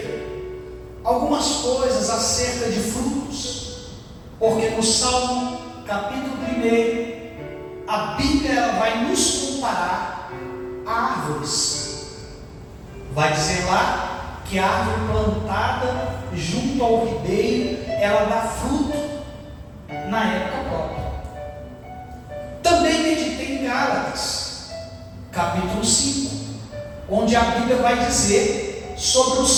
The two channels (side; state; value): both; identical; correlation 1.00